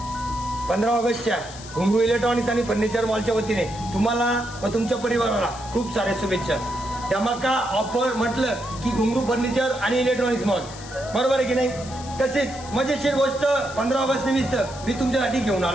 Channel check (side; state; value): left; noise; hiss, 16 dB below the sound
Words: 15 ऑगस्टच्या घुंगरू इलेक्ट्रॉनिक्स आणि फर्निचर मॉलच्या वतीने तुम्हाला व तुमच्या परिवाराला खूप साऱ्या शुभेच्छा. धमाका ऑफर म्हटलं की घुंगरू फर्निचर आणि इलेक्ट्रॉनिक्स मॉल, बरोबर आहे की नाही? तसेच मजेशीर गोष्ट 15 ऑगस्ट निमित्त मी तुमच्यासाठी घेऊन